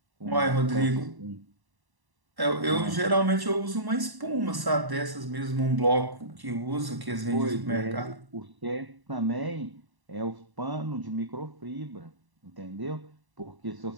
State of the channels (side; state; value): left; late; 1.1 ms